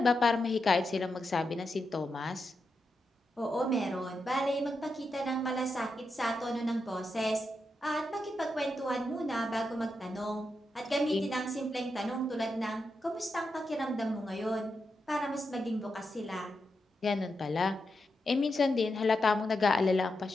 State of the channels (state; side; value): normal; both; correlation 0.86